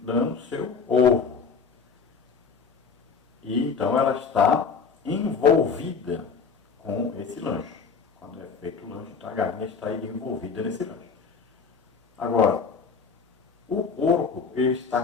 dando seu ovo. E então ela está envolvida com esse lanche. Quando é feito o lanche, então a galinha está envolvida nesse lanche. Agora, o porco ele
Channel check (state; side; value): quieter; right; 5.5 dB